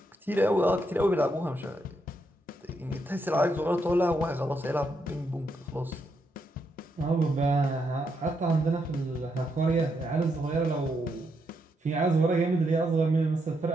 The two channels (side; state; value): both; normal; correlation 0.80